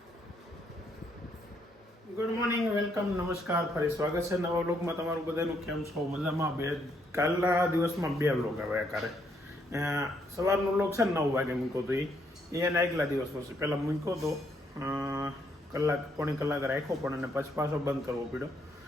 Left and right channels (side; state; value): both; normal; correlation 0.73